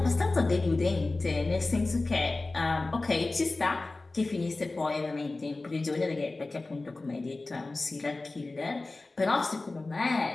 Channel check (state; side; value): quieter; right; 3.3 dB